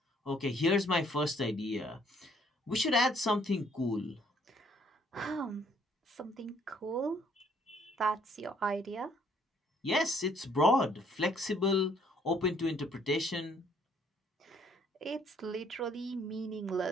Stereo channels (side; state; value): both; normal; correlation 0.64